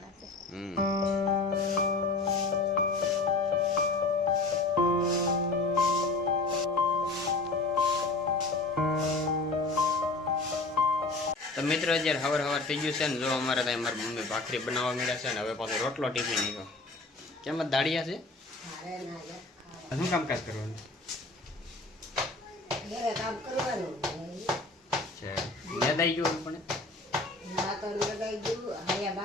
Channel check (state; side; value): quieter; right; 3.4 dB